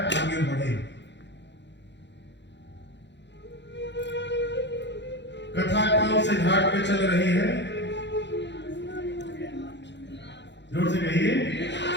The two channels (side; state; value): right; late; 0.52 ms